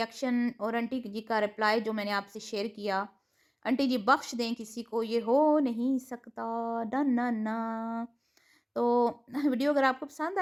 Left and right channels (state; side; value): identical; both; correlation 1.00